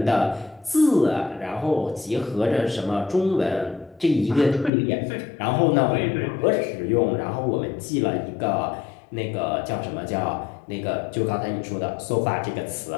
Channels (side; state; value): right; drops out; at 4.7 s